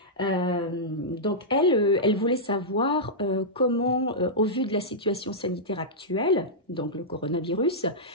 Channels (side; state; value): both; normal; correlation -0.11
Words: Donc, elle voulait savoir comment, au vu de la situation sanitaire actuelle, donc le coronavirus,